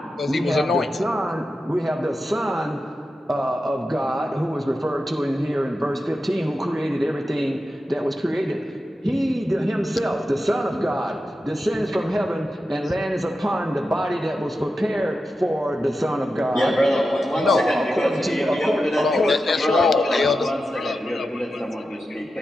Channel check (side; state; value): both; normal; correlation 0.91